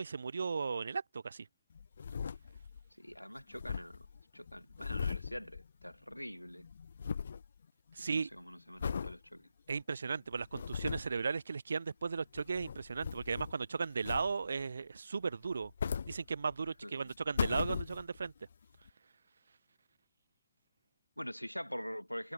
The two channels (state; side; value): inverted; both; correlation -0.87